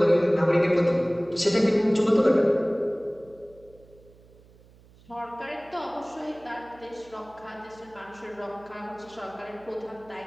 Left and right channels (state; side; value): noise; right; hum, 26 dB below the sound